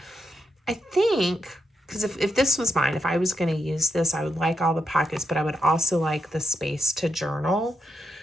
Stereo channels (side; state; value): both; normal; correlation 0.83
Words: I think, because if this was mine, if I was going to use this, I would like all the pockets, but I would also like the space to journal.